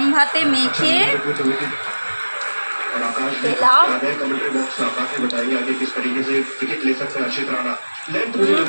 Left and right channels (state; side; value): inverted; both; correlation -1.00